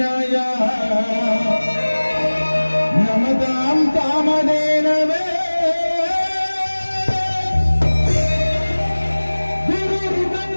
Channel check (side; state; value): both; inverted; correlation -1.00